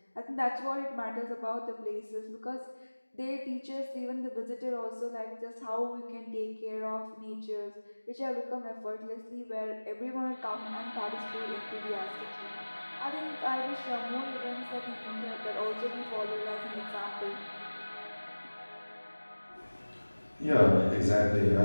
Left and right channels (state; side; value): inverted; both; correlation -1.00